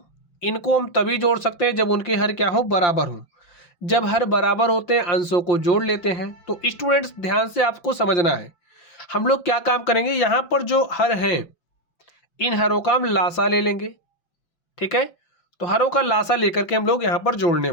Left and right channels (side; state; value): right; late; 5.7 ms